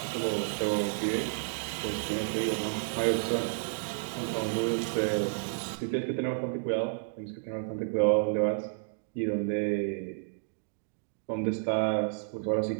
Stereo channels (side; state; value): left; silent; digital silence